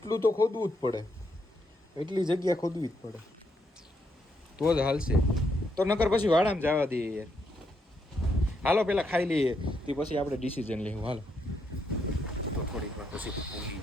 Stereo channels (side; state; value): both; normal; correlation 0.78